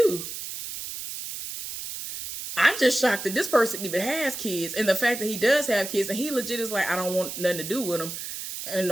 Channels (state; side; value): noise; right; hiss, 8 dB below the sound